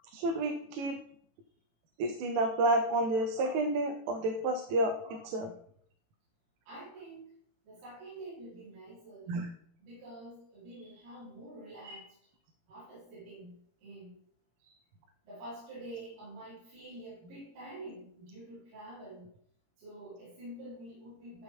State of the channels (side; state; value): left; late; 18 ms